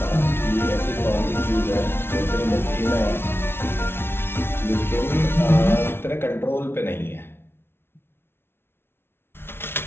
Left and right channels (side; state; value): right; late; 0.11 ms